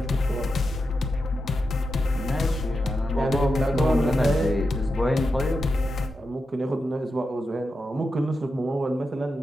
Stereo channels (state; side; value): normal; both; correlation 0.88